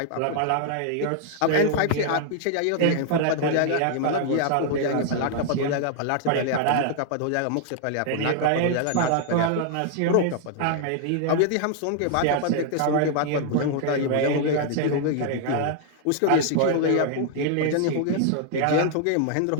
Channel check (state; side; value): different; both; correlation 0.00